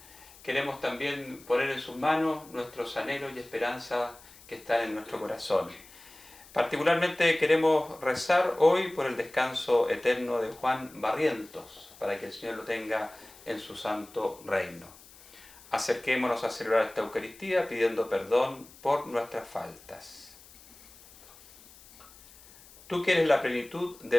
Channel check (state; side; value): noise; left; hiss, 22 dB below the sound